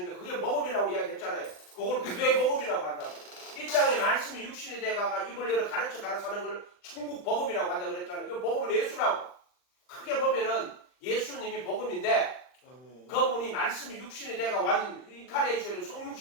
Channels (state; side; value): late; right; 39 ms